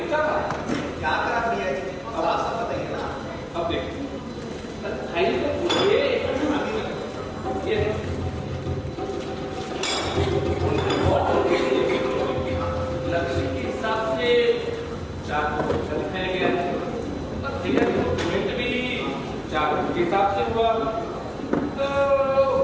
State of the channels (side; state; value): both; identical; correlation 1.00